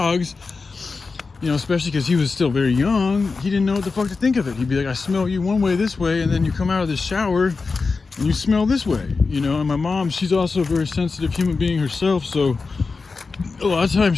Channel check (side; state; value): right; quieter; 4.3 dB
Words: you know, especially because he was still very young, he didn't know what the fuck to think of it. He'd be like, I smell you one way this way, and then you come out of the shower and you smell this way, you know. And my mom, she's also a very sensitive human being herself, so a lot of